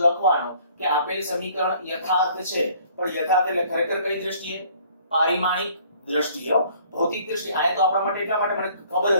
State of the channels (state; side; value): inverted; both; correlation -0.58